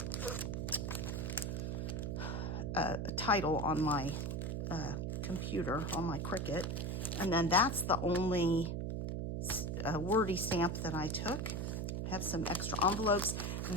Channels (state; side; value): noise; right; hum, 2 dB below the sound